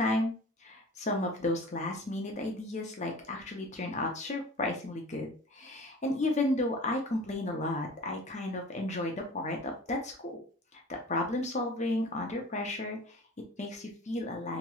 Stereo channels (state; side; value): normal; both; correlation 0.41